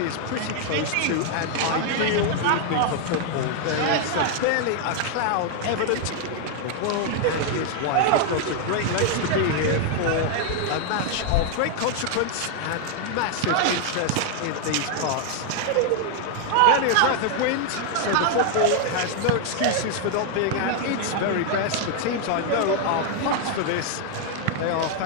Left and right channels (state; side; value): different; both; correlation 0.00